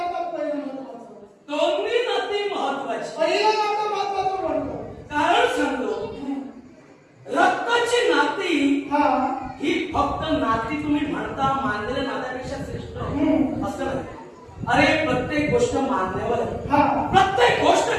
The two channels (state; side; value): identical; both; correlation 1.00